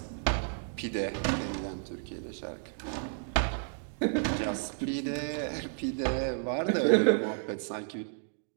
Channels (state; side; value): silent; left; digital silence